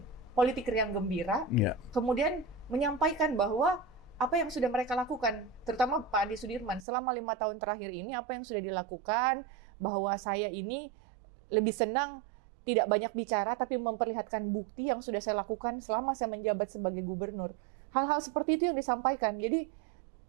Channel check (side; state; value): left; drops out; at 6.9 s